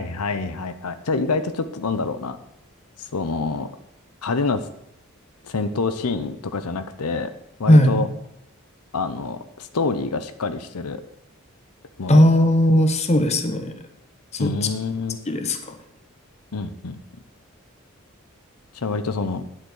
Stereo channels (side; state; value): both; normal; correlation 0.58